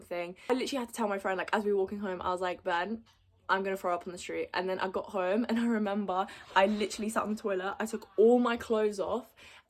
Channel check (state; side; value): identical; both; correlation 1.00